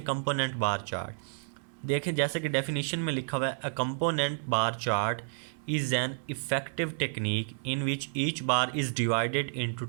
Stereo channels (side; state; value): left; silent; 57 dB below the other